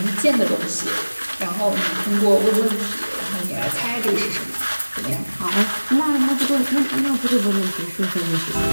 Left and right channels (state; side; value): inverted; both; correlation -1.00